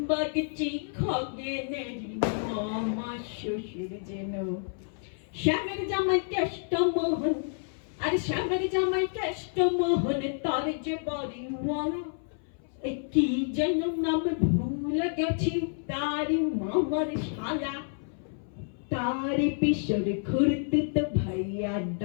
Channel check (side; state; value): right; silent; 56 dB below the other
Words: খগেনের মামা শ্বশুর যেন। শ্যামের জামাই কেষ্টমোহন, আর শ্যামের জামাই কেষ্টমোহন, তার যে বাড়ি মরা। কি যেন নাম ভুলে গেছি, তারি মামার শালা। তারি পিসর খুরতুত ভাইয়া